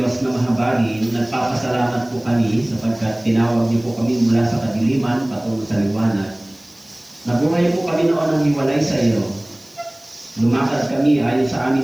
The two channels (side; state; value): right; noise; hiss, 28 dB below the sound